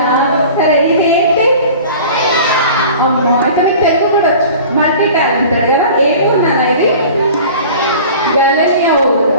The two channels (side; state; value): both; inverted; correlation -0.42